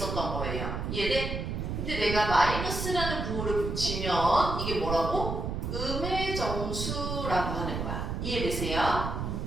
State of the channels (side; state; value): right; noise; rumble, 3 dB below the sound